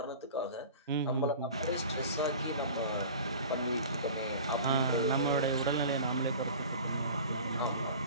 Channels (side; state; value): both; inverted; correlation -0.39